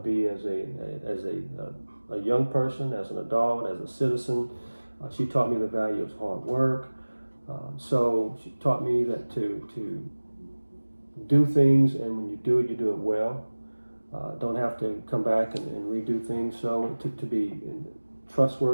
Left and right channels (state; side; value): inverted; both; correlation -1.00